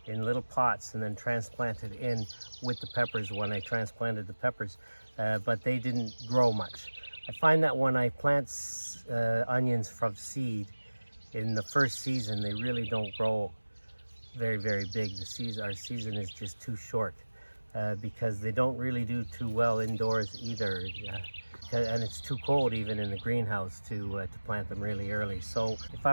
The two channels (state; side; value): inverted; both; correlation -1.00